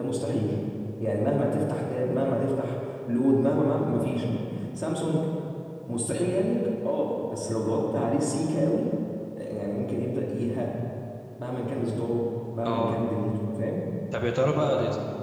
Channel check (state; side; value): identical; both; correlation 1.00